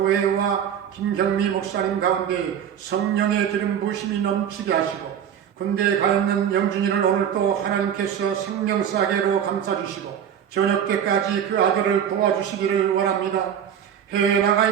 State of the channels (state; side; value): quieter; left; 9.0 dB